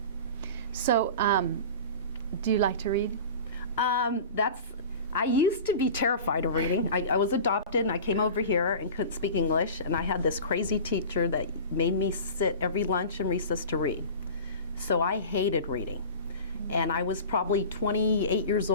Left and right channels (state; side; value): inverted; both; correlation -0.36